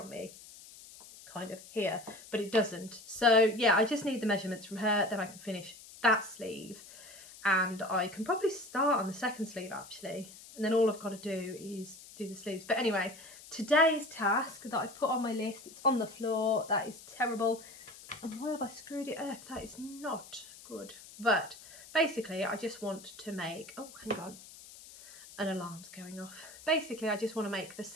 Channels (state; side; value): noise; left; hiss, 18 dB below the sound